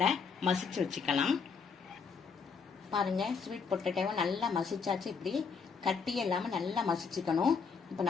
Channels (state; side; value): quieter; right; 5.6 dB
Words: மசிச்சு வச்சுக்கலாம். பாருங்கள், ஸ்வீட் பொட்டேட்டோவை நல்லா மசிச்சாச்சு. இப்படி கட்டி இல்லாமல் நல்லா மசிச்சுக்கணும். இப்போ